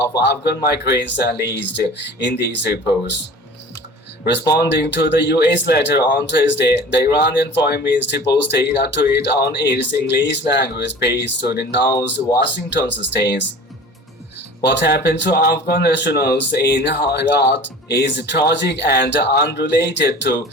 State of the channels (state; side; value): normal; both; correlation 0.41